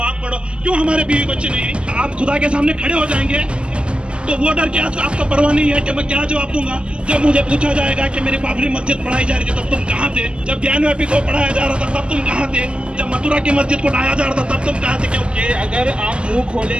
आप पढ़ो? क्यों हमारे बीवी बच्चे नहीं? आप खुदा के सामने खड़े हो जाएंगे तो वो डर क्या आपको परवाह नहीं है कि मैं क्या जवाब दूंगा? जब मुझे पूछा जाएगा कि मेरी बाबरी मस्जिद पढ़ाई जा रही थी तब तुम कहाँ थे? जब ज्ञानव्यापी को पढ़ाया जा रहा था तब तुम कहाँ थे? जब मथुरा की मस्जिद को ढाया जा रहा था तब तुम कहाँ थे? क्योंकि अगर आप मुंह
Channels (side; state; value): left; late; 0.051 ms